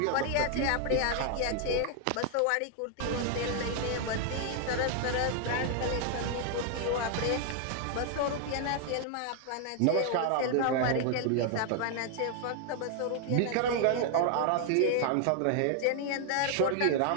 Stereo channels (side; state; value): both; different; correlation 0.00